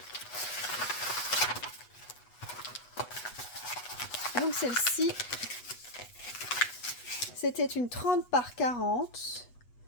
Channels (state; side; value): late; right; 8.1 ms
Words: Donc, celle-ci, c'était une 30 par 40.